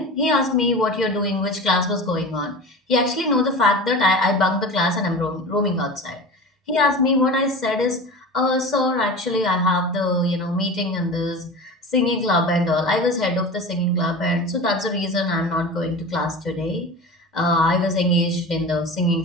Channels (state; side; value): normal; both; correlation 0.32